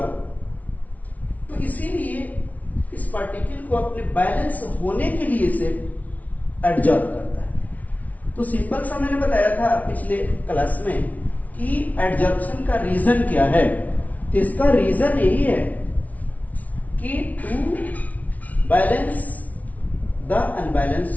तो इसीलिए इस पार्टिकल को अपने बैलेंस होने के लिए इसे एडजॉर्ब करता है। तो सिंपल सा मैंने बताया था पिछले क्लास में कि एडजॉर्प्शन का रीजन क्या है। तो इसका रीजन यही है कि to balance the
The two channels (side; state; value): right; late; 0.072 ms